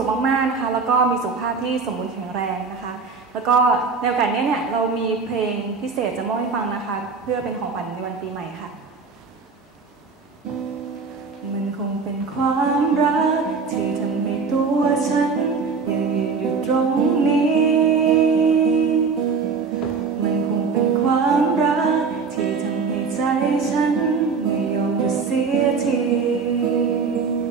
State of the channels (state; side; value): quieter; left; 5.0 dB